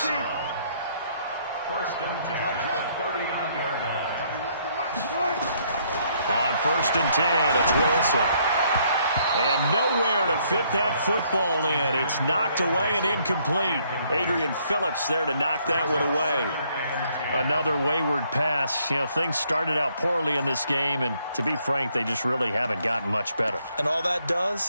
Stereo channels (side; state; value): both; inverted; correlation -0.68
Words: 1st and 10 at the 39-yard line. On 1st and 10, it's Wilson. And nowhere to fit that football in. It's knocked away and incomplete. Adrian Phillips there to knock that one away. Another wayward pass. You know, things started out poorly in this game, and to be frank, they just really haven't gotten much better. And all that